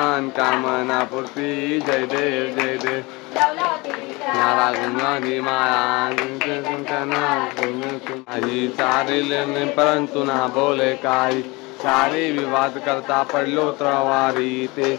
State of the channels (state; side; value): quieter; right; 24.5 dB